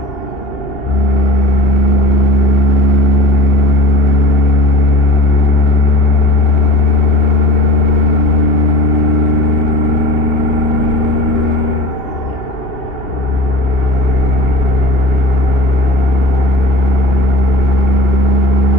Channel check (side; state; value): right; late; 2.8 ms